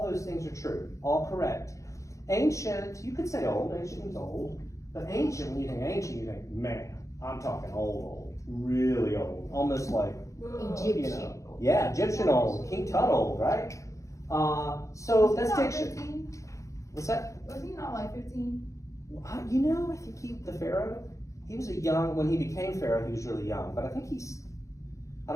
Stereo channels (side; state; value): right; late; 0.15 ms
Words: those things are true. All correct. Ancient, you could say old. Ancient means old. But ancient, when you think ancient, you think, man, I'm talking old. Really old. Almost like, Egyptian. you know. Yeah, Egyptian old. King Tut old, right? So that's diction. 15? What's that? Was he not like 15? You know, I think the Pharaoh, he was a young, when he became Pharaoh, he was really young. But I think I